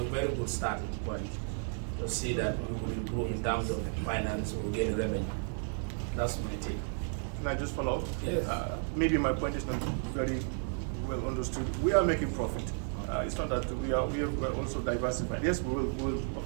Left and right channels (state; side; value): silent; left; 56 dB below the other